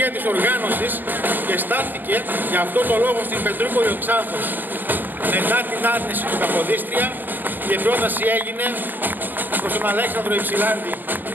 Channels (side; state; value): left; late; 0.091 ms